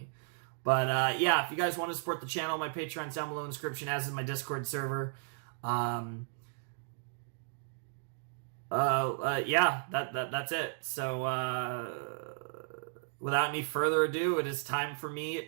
But yeah, if you guys want to support the channel, my Patreon's down below in the description, as is my Discord server. Yeah, that's it. So, without any further ado, it is time for me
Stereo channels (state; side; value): silent; left; digital silence